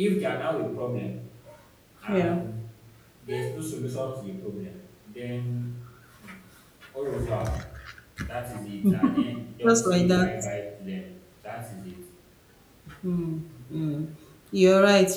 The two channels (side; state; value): both; identical; correlation 1.00